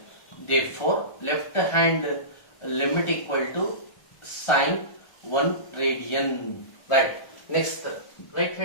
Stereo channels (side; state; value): right; late; 1.4 ms